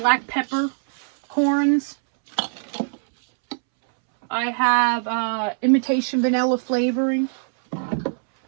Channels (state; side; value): silent; left; 64 dB below the other